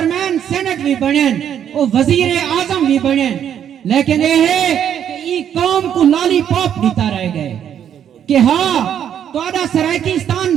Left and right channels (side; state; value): left; quieter; 9.3 dB